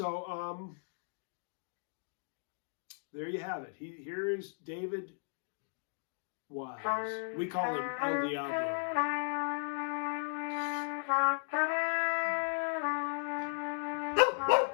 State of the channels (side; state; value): right; silent; digital silence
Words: there you have it. Here is David Wise. We call him El Diablo.